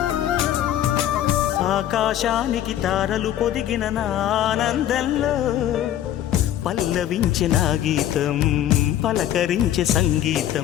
ఆకాశానికి తారలు పొదిగిన నా ఆనందంలో పల్లవించే నా గీతం పలకరించే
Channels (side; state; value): right; quieter; 11.7 dB